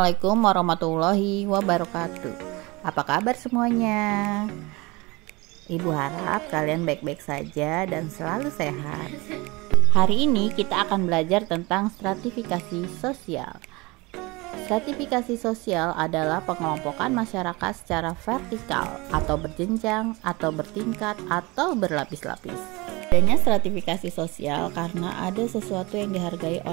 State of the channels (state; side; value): quieter; left; 24.3 dB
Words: warahmatullahi wabarakatuh. Apa kabar semuanya? Ibu harap kalian baik-baik saja dan selalu sehat. Hari ini kita akan belajar tentang stratifikasi sosial. Stratifikasi sosial adalah pengelompokan masyarakat secara vertikal atau berjenjang atau bertingkat atau berlapis-lapis. Adanya stratifikasi sosial karena ada sesuatu yang dihargai